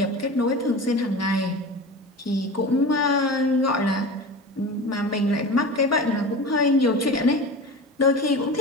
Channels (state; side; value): normal; both; correlation 0.31